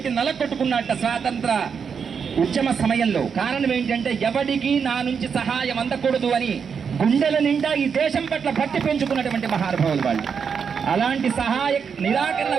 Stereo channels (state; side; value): quieter; left; 6.5 dB